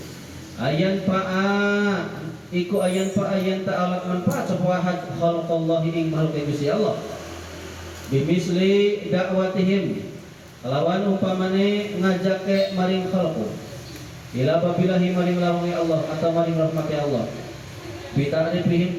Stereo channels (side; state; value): both; identical; correlation 1.00